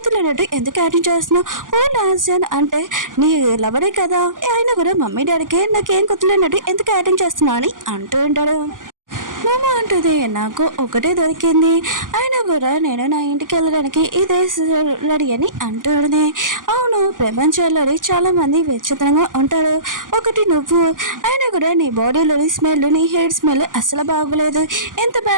ఎందుకు యాక్టింగ్ చేస్తున్నావు ఫోన్ డాన్స్ అంటే నీ లవరే కదా ఆయన కూడా మమ్మీ డాడీకి నాకేం గుర్తులేనట్టు ఎందుకు యాక్టింగ్ చేస్తున్నా అని అంటూ ఉంటాడు మామ అంటుంది నాకు ఒకటే దొరికింది అయినా కూడా నేను నా ఇంటికి వెళ్ళడానికి ఇదే రెడీ అని అంటుంది అవును ప్రపంచంలోని చాలా మంది విచిత్రంగా ఉంటారు ఒకటి నువ్వు అయినా కూడా నీ బాడీలోని స్మెల్ నీ హెయిర్ స్మెల్ అసలు బాగోలేదు ఎంత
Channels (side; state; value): left; late; 0.89 ms